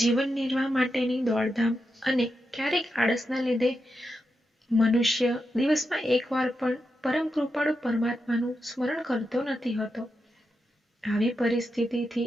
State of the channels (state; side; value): normal; both; correlation 0.87